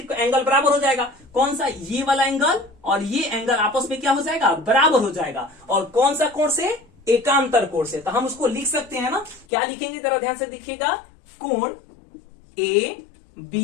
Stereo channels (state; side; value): drops out; right; at 9.5 s